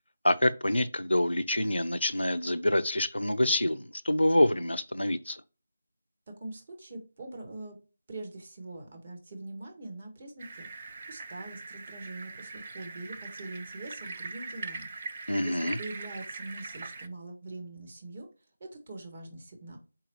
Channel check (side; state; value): both; inverted; correlation -0.92